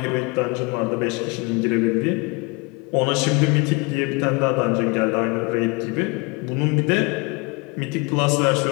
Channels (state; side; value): quieter; right; 27.5 dB